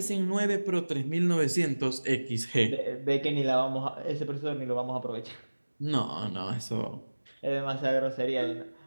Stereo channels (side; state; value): both; inverted; correlation -1.00